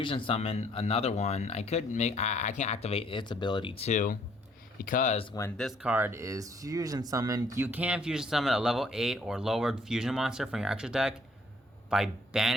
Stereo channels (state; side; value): normal; both; correlation 0.64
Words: summon another one. I could make. I can activate its ability too, because when this card is fusion summoned, you can fusion summon a level 8 or lower fusion monster from your extra deck by